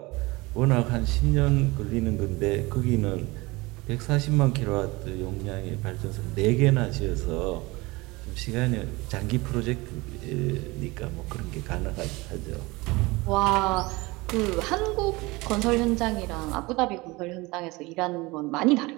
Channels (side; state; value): left; quieter; 22.9 dB